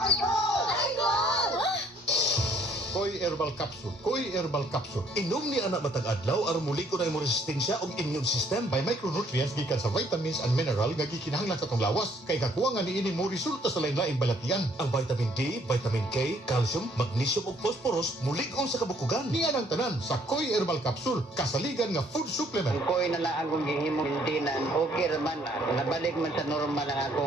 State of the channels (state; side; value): normal; both; correlation 0.64